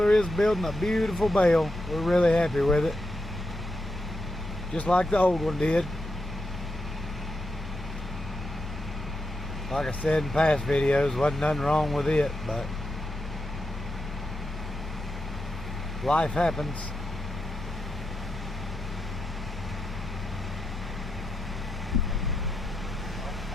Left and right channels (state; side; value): normal; both; correlation 0.85